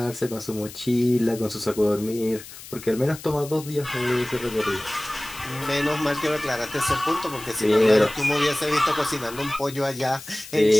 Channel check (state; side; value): noise; left; hiss, 15 dB below the sound